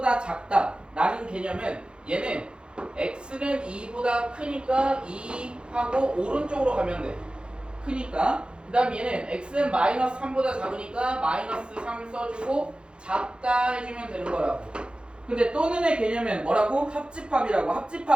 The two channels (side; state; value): left; late; 0.053 ms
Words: 작다 라는 개념은 얘는 x는 2보다 크니까 2하고 오른쪽으로 가면 돼. 크니까. 그 다음 얘는 x는 마이너스 3보다 작으니까 마이너스 3 써주고 작다 해주면 되는 거라고. 근데 또는의 개념은 뭐라고? 합집합이라고.